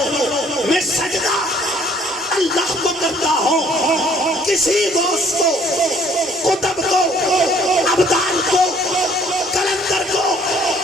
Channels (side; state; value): both; normal; correlation 0.59